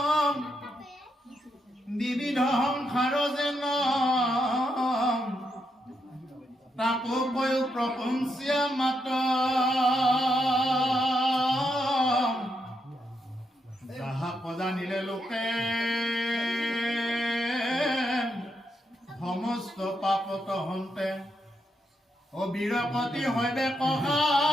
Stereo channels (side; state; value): both; normal; correlation 0.81